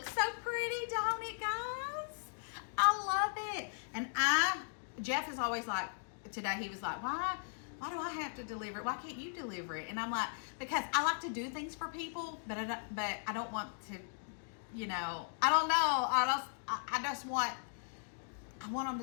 so pretty, don't it, guys? I love it. And Jeff is always like, today he was like, why do I have to deliver it? Why can't you deliver it? And I'm like, because I like to do things for people, but I don't want to, you know, I don't know. I just want, I want them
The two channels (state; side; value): silent; right; digital silence